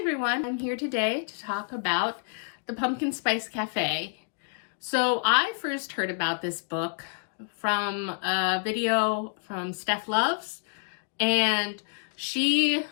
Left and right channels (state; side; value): silent; right; digital silence